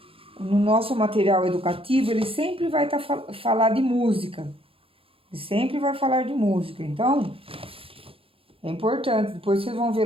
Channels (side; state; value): left; late; 0.27 ms